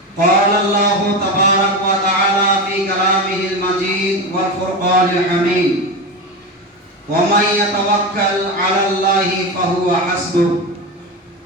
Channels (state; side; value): normal; both; correlation 0.20